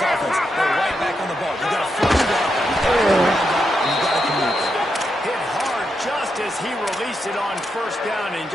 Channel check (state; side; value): normal; both; correlation 0.84